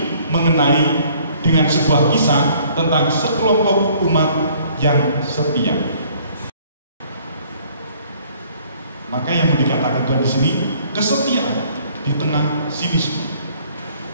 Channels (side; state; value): both; inverted; correlation -0.58